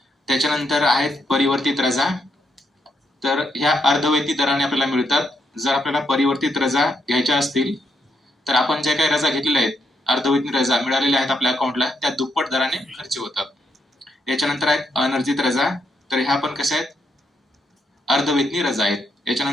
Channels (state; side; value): normal; both; correlation 0.77